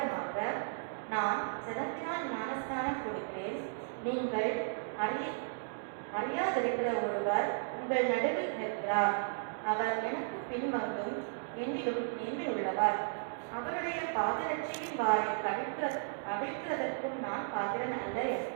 நான் ஜலத்தினால் ஞானஸ்நானம் கொடுக்கிறேன், நீங்கள் அறியாதிருக்கிற ஒருவர் உங்கள் நடுவில் நிற்கிறார். அவர் எனக்கு பின்வந்தும் என்னிலும் மேன்மையுள்ளவர். அவருடைய பாதரட்சையின் வாரை அவிழ்க்கிறதற்கும் நான் பாத்திரன் அல்ல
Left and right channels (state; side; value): silent; left; digital silence